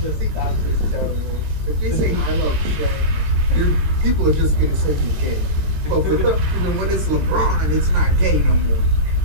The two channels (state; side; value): late; left; 13 ms